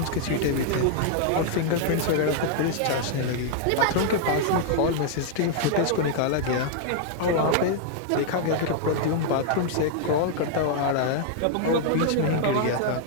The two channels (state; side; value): different; both; correlation 0.00